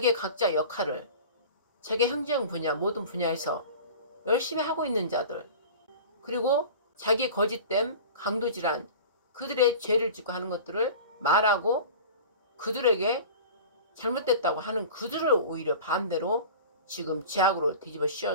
각자 역할을 자기 행정 분야 모든 분야에서 열심히 하고 있는 자들, 그리고 자기 거짓됨 강도질환 그들의 죄를 짓고 하는 것들을 말하고 그들에게 잘못됐다고 하는 그들을 오히려 반대로 지금 죄악으로 뒤집어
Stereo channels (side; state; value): both; inverted; correlation -0.38